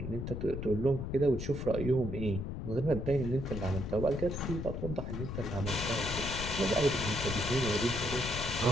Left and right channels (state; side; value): noise; left; rumble, 5 dB below the sound